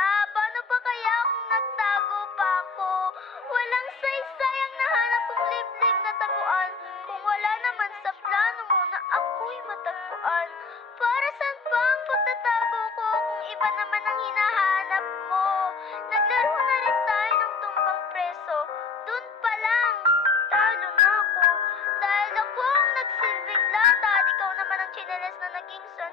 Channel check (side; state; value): right; quieter; 4.7 dB